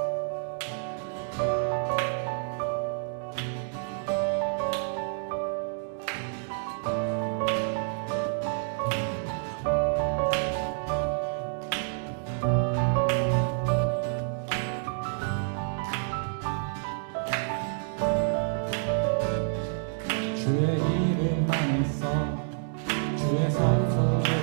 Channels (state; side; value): silent; left; digital silence